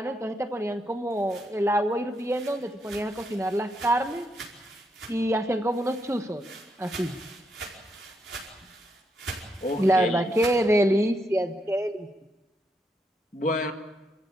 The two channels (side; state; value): both; normal; correlation 0.79